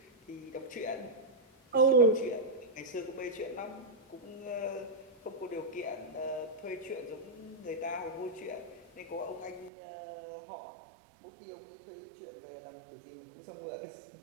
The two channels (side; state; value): left; drops out; at 9.7 s